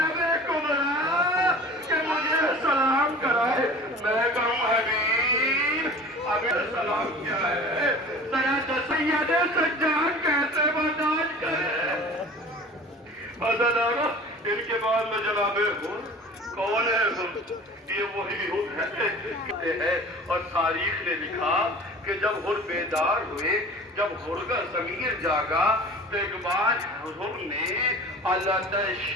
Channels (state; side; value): normal; both; correlation 0.41